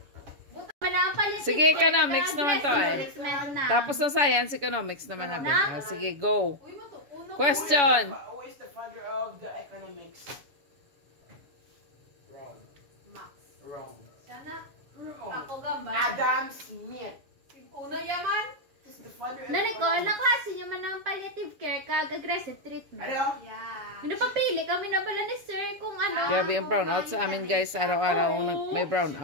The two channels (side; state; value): left; late; 7.1 ms